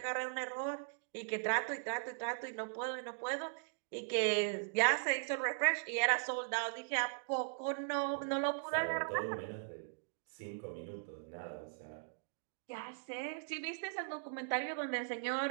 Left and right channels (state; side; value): silent; left; digital silence